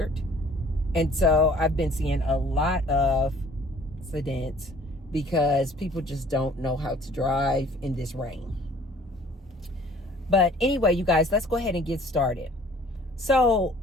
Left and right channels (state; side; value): normal; both; correlation 0.54